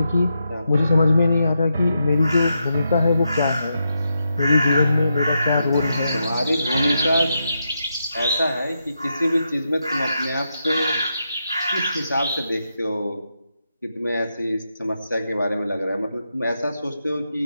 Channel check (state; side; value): inverted; both; correlation -0.85